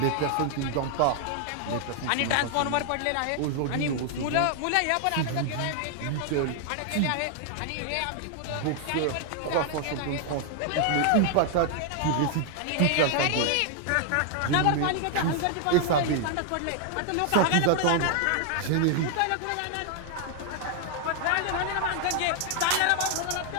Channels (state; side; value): different; both; correlation 0.00